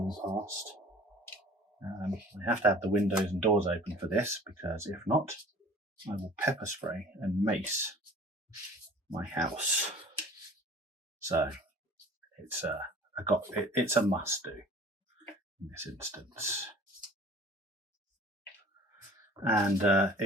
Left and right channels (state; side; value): normal; both; correlation 0.47